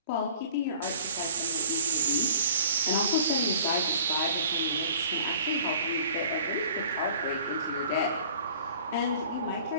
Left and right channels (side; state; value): both; inverted; correlation -0.49